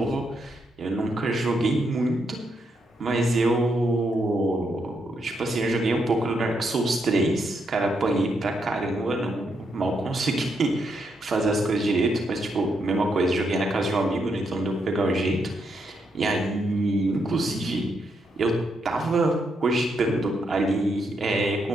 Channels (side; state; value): both; normal; correlation 0.79